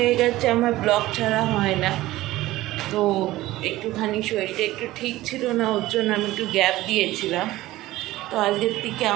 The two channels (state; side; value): quieter; left; 16.8 dB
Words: গেছে আমার ব্লগ ছাড়া হয় না, তো একটুখানি শরীরটা একটু ঠিক ছিল না, ওর জন্য আমি একটু গ্যাপ দিয়েছিলাম। তো আজকের থেকে